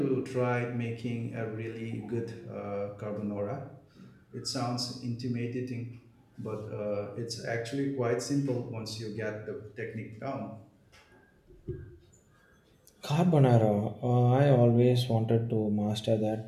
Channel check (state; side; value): identical; both; correlation 1.00